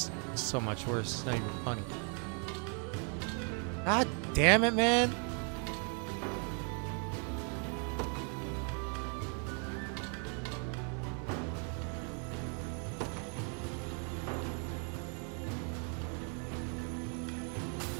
so much worse. It's not even funny. God damn it, man.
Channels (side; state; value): left; quieter; 39.9 dB